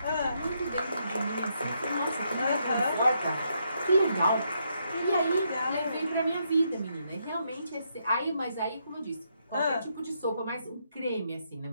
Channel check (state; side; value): inverted; both; correlation -0.77